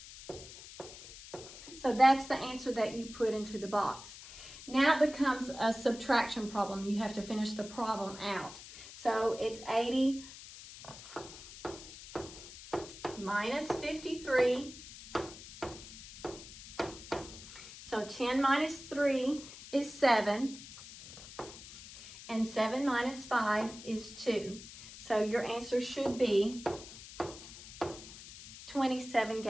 So that's the answer that you put into the box. Now it becomes a subtraction problem. You have to finish the problem out. So it's 80 minus 53. So 10 minus 3 is 7. And 7 minus 5 is 2. So your answer should be 27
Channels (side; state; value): left; noise; hiss, 15 dB below the sound